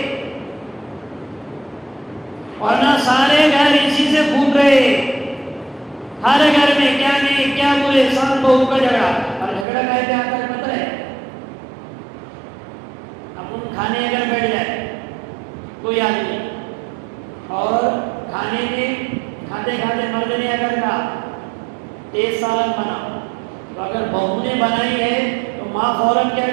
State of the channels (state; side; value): drops out; left; at 9.7 s